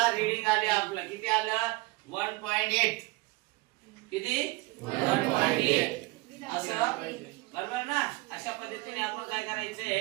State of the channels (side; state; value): left; quieter; 22.9 dB